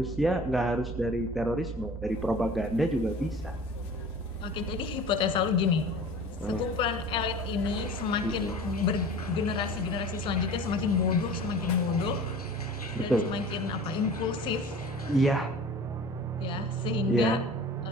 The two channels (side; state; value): both; normal; correlation 0.41